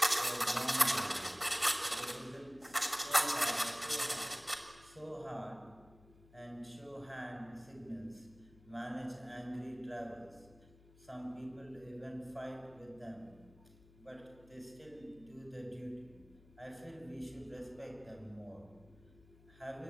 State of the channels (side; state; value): left; noise; hum, 24 dB below the sound